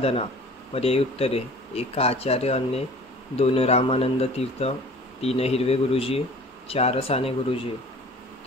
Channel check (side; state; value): both; normal; correlation 0.46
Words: पर्यायी उत्तरे: 1 आचार्य अन्ने, 2 रामानंद तीर्थ, 3 हिरवे गुरुजी, 4 साने गुरुजी.